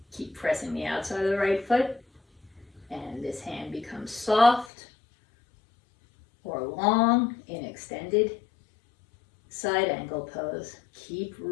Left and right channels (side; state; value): right; drops out; at 4.7 s